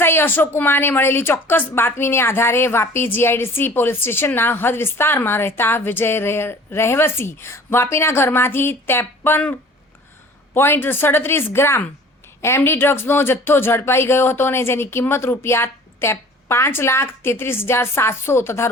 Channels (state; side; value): normal; both; correlation 0.47